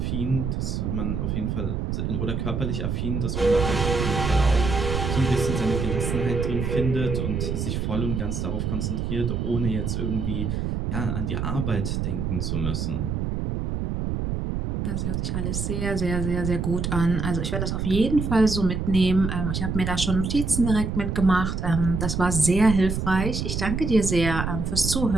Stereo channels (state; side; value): noise; right; rumble, 1 dB below the sound